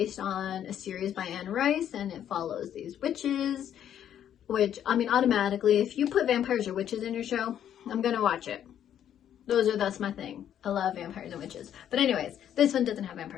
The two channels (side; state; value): right; quieter; 10.1 dB